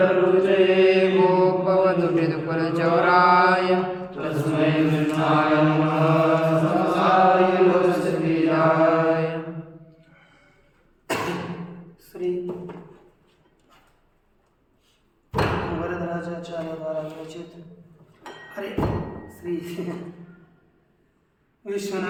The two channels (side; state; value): both; identical; correlation 1.00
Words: गोपवधुभिदुकुलचौराय तस्मै कृष्णाय नमः संसाय लोकसतीराय। श्री वरदराजाचार्य द्वारा विरचित अरे श्री